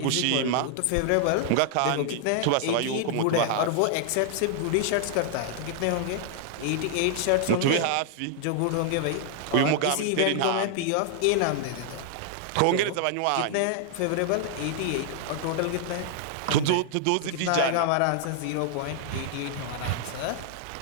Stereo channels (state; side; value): different; both; correlation -0.01